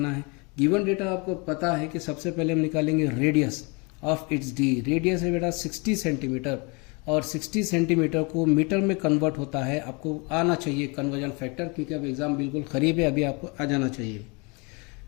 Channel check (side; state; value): right; quieter; 30.3 dB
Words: है। गिवन डेटा आपको पता है कि सबसे पहले हम निकालेंगे radius of its D. Radius है बेटा 60 सेंटीमीटर और 60 सेंटीमीटर को मीटर में कन्वर्ट होता है। आपको आना चाहिए कन्वर्जन फैक्टर, क्योंकि अब एग्जाम बिल्कुल करीब है, अभी आपको आ जाना चाहिए।